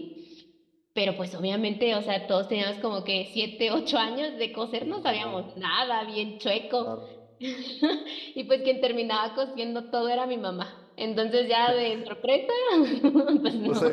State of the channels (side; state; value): both; identical; correlation 1.00